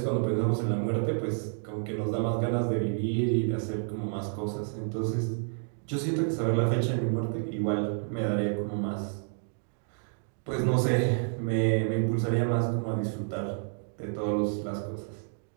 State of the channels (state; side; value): silent; left; digital silence